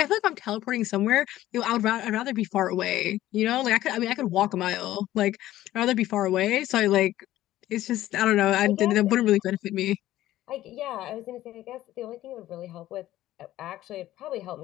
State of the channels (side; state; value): right; quieter; 14.5 dB